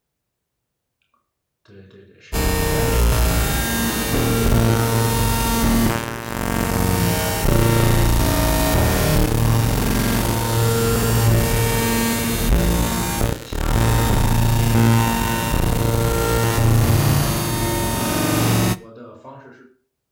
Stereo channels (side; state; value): both; identical; correlation 1.00